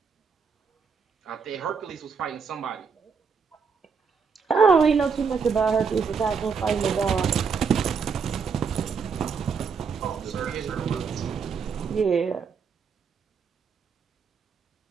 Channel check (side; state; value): left; quieter; 5.7 dB